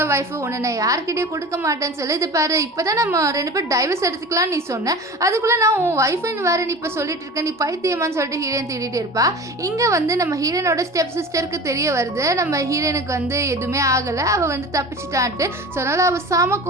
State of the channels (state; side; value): normal; both; correlation 0.35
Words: ஒய்ஃபு, உன்னை நான் யார்கிட்டயே கொடுக்க மாட்டேன்னு சொல்லி, இது பாரு இப்போ தான் நம்ம 2 பேர் டைவர்ஸ் எடுத்துக்கலாம் நீ சொன்ன, அதுக்குள்ளே நான் உன் ஒய்ஃபுன்னு வேறு நீ இப்போ சொல்லிட்டு இருக்க, நீ பைத்தியமான்னு சொல்லிட்டு ஹீரோயின் தேடிட்டு இருப்பா. இங்கே வந்து நம்ம ஹீரோயினோட ஸ்டெப் சிஸ்டருக்கு தெரிய வருது நம்ம ஹீரோயினுக்கு வந்து எதுவுமே ஆகலை, அவள் வந்து தப்பிச்சிட்டான்ட்டு. ஸோ அதனால் அவள் சாம